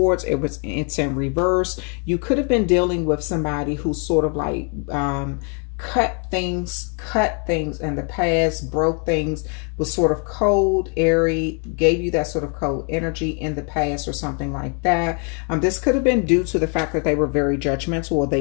it's in reverse. You could have been dealing with somebody who sort of like cut things in the past, broke things, was sort of cold, airy, gave you that sort of cold energy in the past or something like that. This could have been due to the fact that they were very judgmental, or they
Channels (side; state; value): right; quieter; 38.8 dB